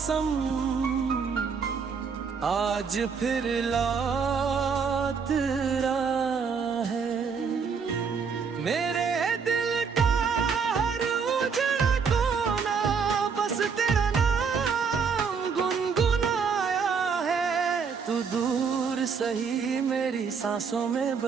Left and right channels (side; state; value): left; quieter; 5.9 dB